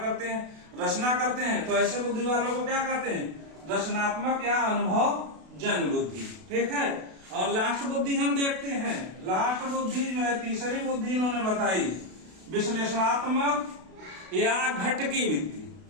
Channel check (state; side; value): late; left; 32 ms